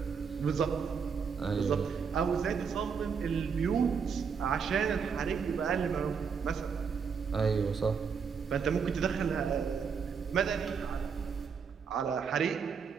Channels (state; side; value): quieter; left; 6.2 dB